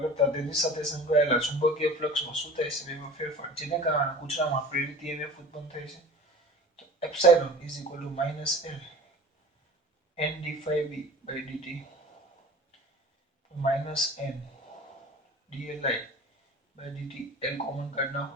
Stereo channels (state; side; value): normal; both; correlation 0.40